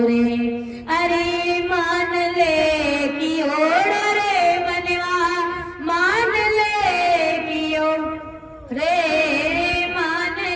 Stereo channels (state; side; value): identical; both; correlation 1.00